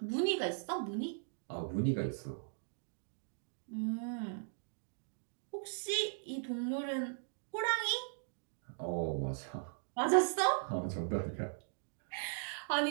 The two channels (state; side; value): silent; left; digital silence